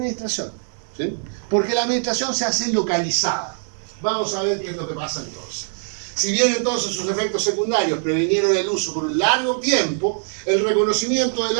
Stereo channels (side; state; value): left; silent; 64 dB below the other